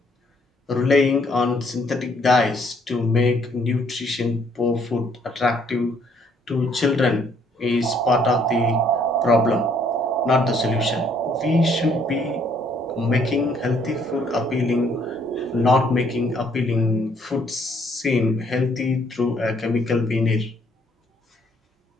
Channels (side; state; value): both; normal; correlation 0.65